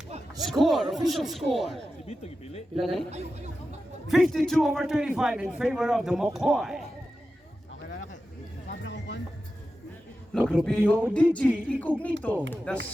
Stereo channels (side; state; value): both; normal; correlation 0.92